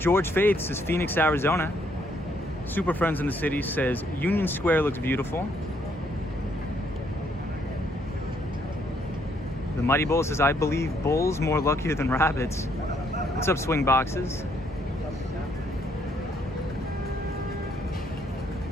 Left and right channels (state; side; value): normal; both; correlation 0.70